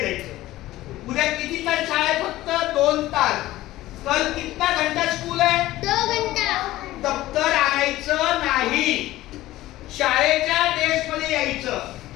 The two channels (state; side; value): quieter; right; 16.2 dB